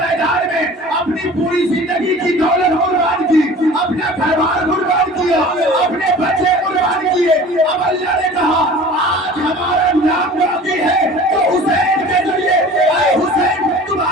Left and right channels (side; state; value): both; normal; correlation 0.42